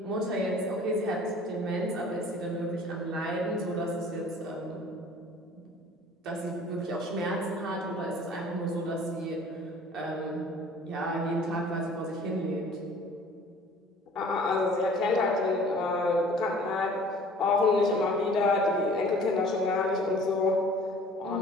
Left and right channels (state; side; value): normal; both; correlation 0.49